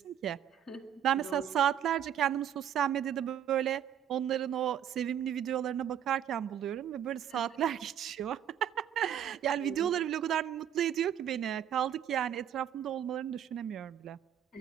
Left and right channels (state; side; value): quieter; left; 9.6 dB